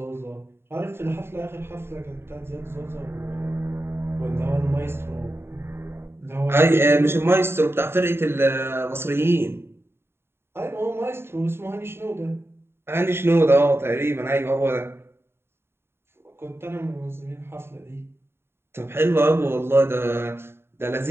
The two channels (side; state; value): left; late; 0.11 ms